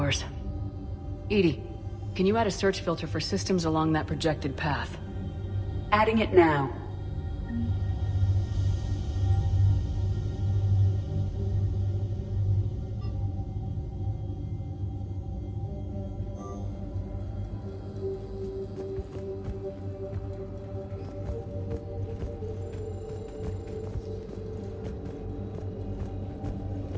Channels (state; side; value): identical; both; correlation 1.00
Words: Edie, Can you add a search filter for systems along that projected path? Adding it now.